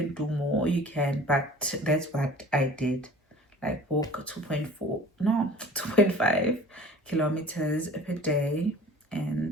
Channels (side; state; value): both; normal; correlation 0.44